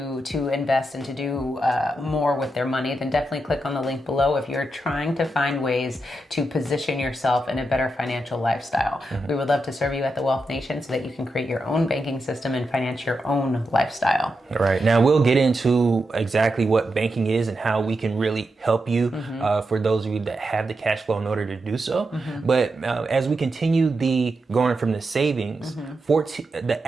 invest and to do more with their money, then definitely click on the link below if you're trying to find ways to position yourself in a better financial lifestyle. Mm-hmm. We would love to serve you at the Wealth Nation so that you can create your own banking system and finance your own lifestyle. All right. Now we'll get into exactly what banking is and how we can really help you for those of you that have the cash flow in order to do so. Mm-hmm. But as we continue going from the savings, the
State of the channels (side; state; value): both; normal; correlation 0.87